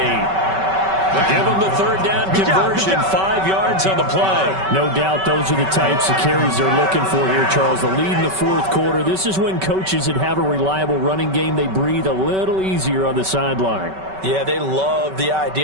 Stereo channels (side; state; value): left; late; 5.2 ms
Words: Give them the third down conversion, 5 yards on the play. No doubt those are the types of carries they're looking for here, Charles. The lead in the fourth quarter. This is when coaches that have a reliable running game, they breathe a little easier on the sideline. Yeah, they love the